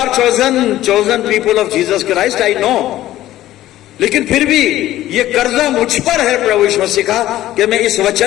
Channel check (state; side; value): quieter; right; 14.3 dB